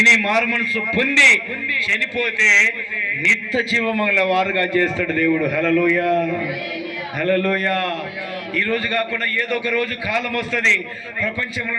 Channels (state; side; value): identical; both; correlation 1.00